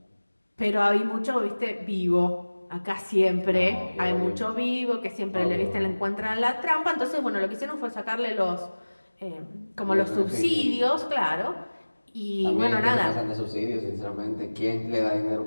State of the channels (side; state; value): both; inverted; correlation -1.00